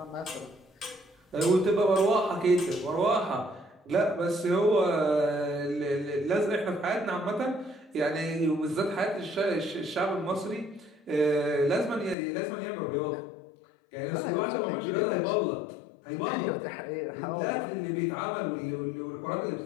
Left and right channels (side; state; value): right; drops out; at 12.2 s